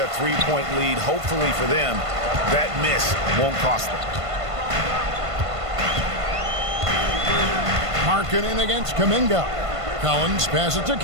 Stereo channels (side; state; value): left; late; 1.5 ms